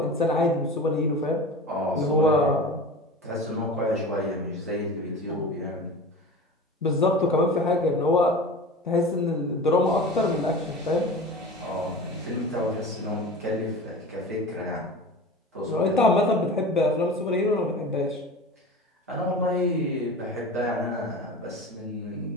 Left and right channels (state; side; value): normal; both; correlation 0.34